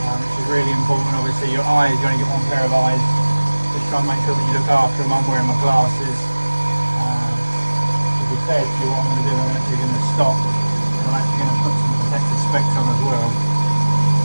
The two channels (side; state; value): both; inverted; correlation -1.00